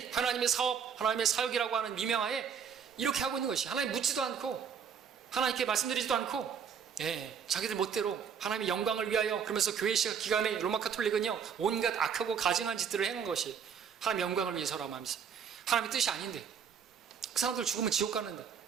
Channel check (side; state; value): left; quieter; 7.2 dB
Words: 하나님의 사업, 하나님의 사역이라고 하는 미명하에 이렇게 하고 있는 것이, 하나님 묻지도 않고 하나님께 말씀드리지도 않고, 자기들 멋대로 하나님의 영광을 위하여, 그러면서 교회 시작 기간에 로마 카톨릭은요 온갖 악하고 가증한 짓들을 행한 것이 하나님의 영광을 위해서라고 하면서, 하나님의 뜻이 아닌데 그 사람들 죽으면 지옥 가는데,